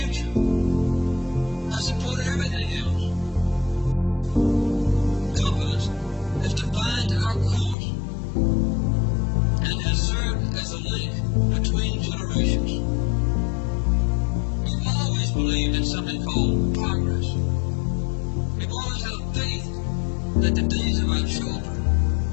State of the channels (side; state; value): right; drops out; at 7.8 s